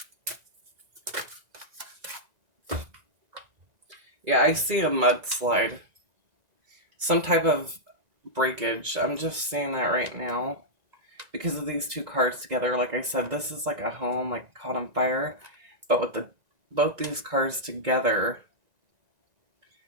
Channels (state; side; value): late; left; 1.9 ms